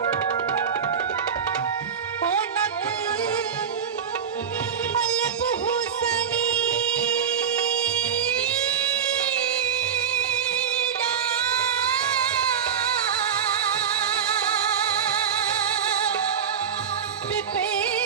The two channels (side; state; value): left; quieter; 7.6 dB